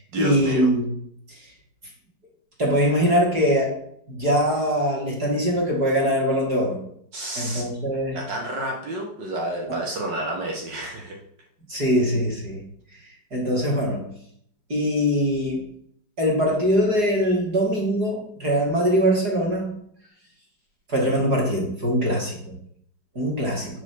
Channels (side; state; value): left; late; 4.8 ms